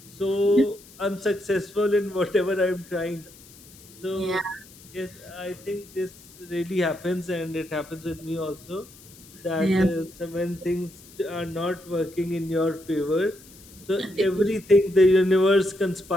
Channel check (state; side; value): noise; left; hiss, 22 dB below the sound